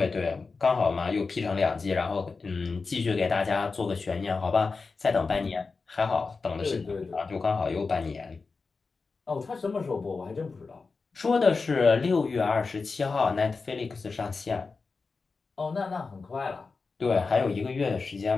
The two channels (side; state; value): right; quieter; 4.4 dB